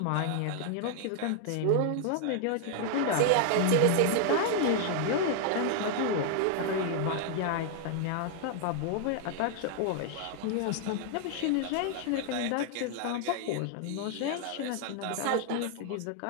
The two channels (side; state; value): both; different; correlation 0.00